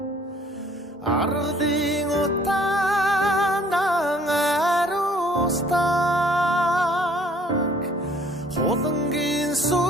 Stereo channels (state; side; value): normal; both; correlation 0.58